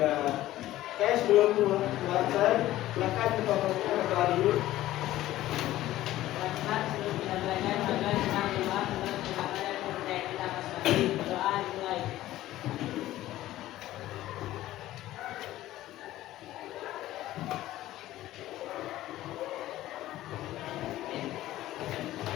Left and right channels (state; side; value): quieter; right; 15.0 dB